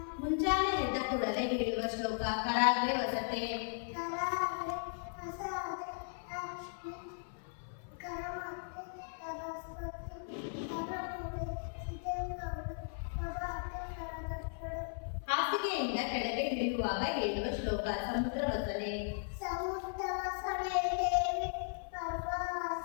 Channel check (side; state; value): right; silent; 53 dB below the other